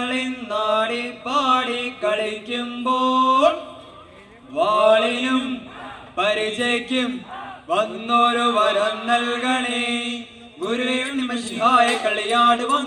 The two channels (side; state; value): both; identical; correlation 1.00